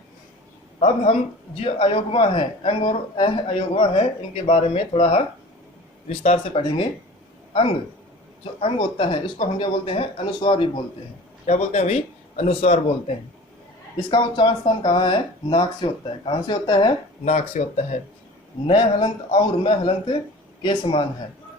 अब हम जो अयोगवा है, अंग और अ अयोगवा है, इनके बारे में थोड़ा विस्तार से पढ़ेंगे। अंग, जो अंग होता है इसको हम क्या बोलते हैं? अनुस्वार भी बोलते हैं। क्या बोलते हैं भाई? अनुस्वार बोलते हैं। इसका उच्चारण स्थान कहाँ है? नाक से होता है। कहाँ से होता है? नाक से होता है। न हलंत और म हलंत के समान है।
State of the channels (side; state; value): both; normal; correlation 0.41